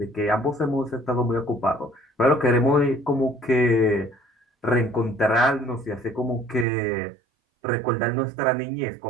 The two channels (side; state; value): left; drops out; at 6.7 s